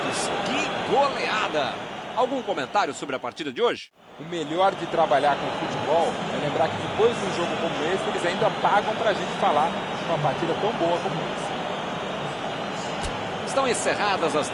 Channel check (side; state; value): both; identical; correlation 1.00